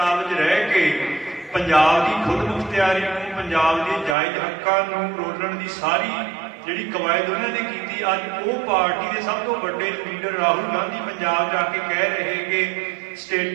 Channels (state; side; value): drops out; left; at 4.2 s